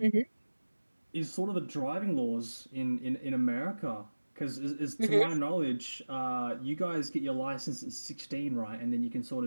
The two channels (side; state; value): both; inverted; correlation -1.00